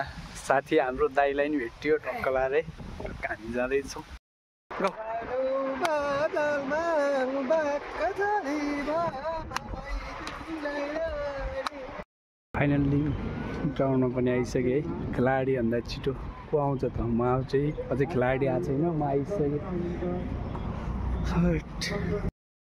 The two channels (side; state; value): both; identical; correlation 1.00